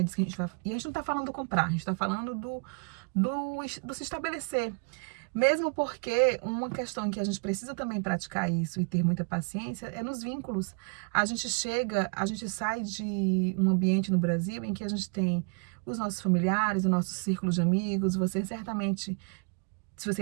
disso que a gente vai. E a gente não tá falando do comprar, a gente tá falando do se estabelecer. Mesmo porque uma questão em que a gente precisa também praticar isso e ter muita paciência é nos vínculos. A gente sai de um ambiente no Brasil em que a gente tem os nossos familiares, o nosso círculo de amigos. Você certamente, se você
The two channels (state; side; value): quieter; left; 38.1 dB